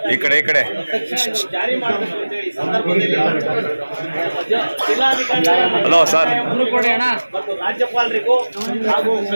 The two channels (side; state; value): both; inverted; correlation -1.00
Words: ಈ ಕಡೆ ಜಾರಿ ಮಾಡಬೇಕು ಅಂತ ಹೇಳಿ ಸಂದರ್ಭದಲ್ಲಿ ಜಿಲ್ಲಾಧಿಕಾರಿ ಮತ್ತು ರಾಜ್ಯಪಾಲರಿಗೂ ಹಾಗೂ